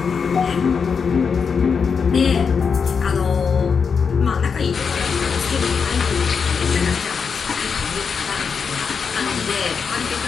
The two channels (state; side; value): quieter; right; 5.9 dB